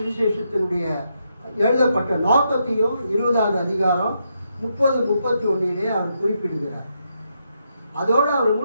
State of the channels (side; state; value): both; inverted; correlation -0.81